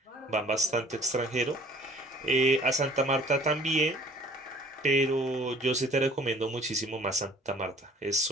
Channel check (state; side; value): normal; both; correlation 0.53